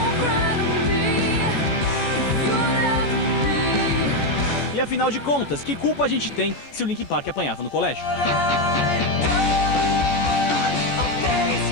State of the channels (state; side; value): late; right; 14 ms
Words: E afinal de contas, que culpa a gente tem se o Linkin Park apanhava no colégio?